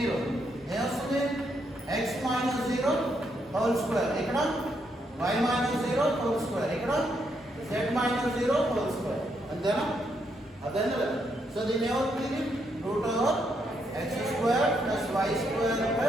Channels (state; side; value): normal; both; correlation 0.77